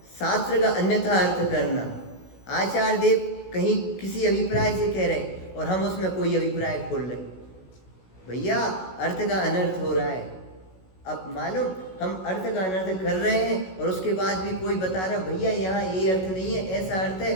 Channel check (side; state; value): right; late; 16 ms